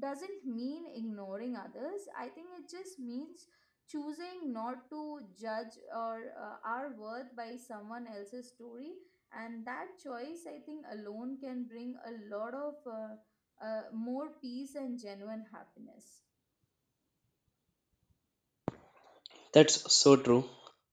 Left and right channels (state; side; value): identical; both; correlation 1.00